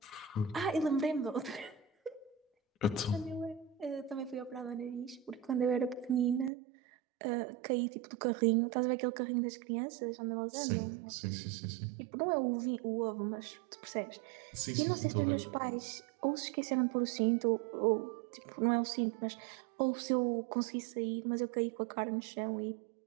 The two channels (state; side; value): drops out; left; at 6.5 s